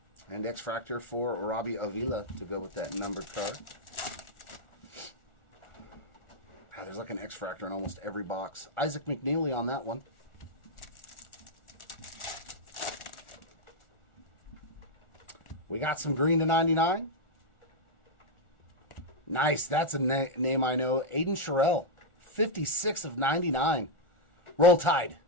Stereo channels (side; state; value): right; late; 1.4 ms